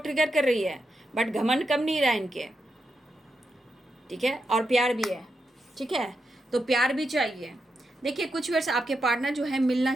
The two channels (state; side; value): normal; both; correlation 0.85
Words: ट्रिगर कर रही है, बट घमंड कम नहीं रहा इनके, ठीक है, और प्यार भी है, ठीक है, तो प्यार भी चाहिए। देखिए कुछ वर्ष आपके पार्टनर जो है मिलना